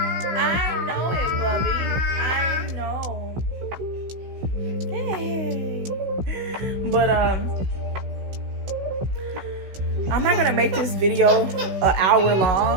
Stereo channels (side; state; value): left; late; 16 ms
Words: I know it, Bubby. I know. Hey. But I'm not gonna make this video an hour